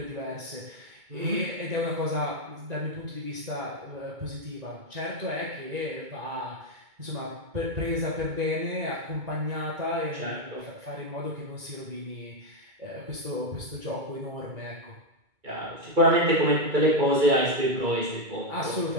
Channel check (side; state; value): left; late; 2.2 ms